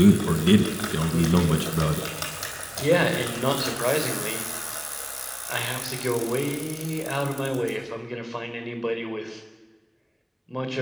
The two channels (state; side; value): identical; both; correlation 1.00